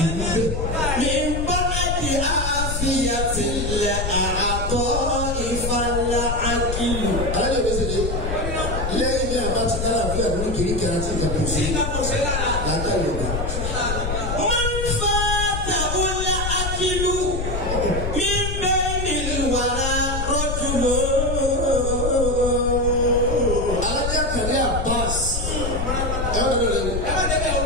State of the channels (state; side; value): noise; left; rumble, 3 dB below the sound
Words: ní bẹ́ẹ̀. mi bá di àfihàn ilẹ̀ àtọ́ ìfàlà àkìlù. alájọ bí sèé lẹ́yìn bí àbá ti dára fún ẹ̀rọ kiri kẹrẹ àti ìjà kò sí. sí ká kò sí lára. láńkà yorùbá. wọ́n fa tàwọlá àkìlù mi bẹ́ẹ̀ ni wàrà rọ́jùmọ́. alájà kàlẹ́ Abbas ẹ wọ́n lọ lẹ́nu. ẹ má débẹ̀ o.